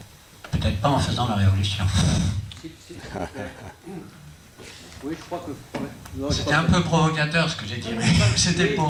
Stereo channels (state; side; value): identical; both; correlation 1.00